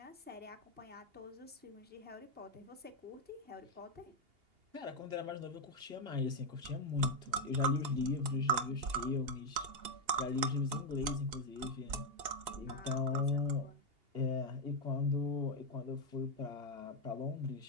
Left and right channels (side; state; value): left; late; 2.8 ms